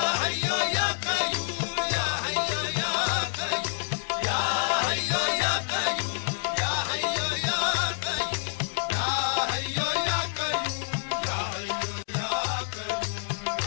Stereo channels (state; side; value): silent; right; digital silence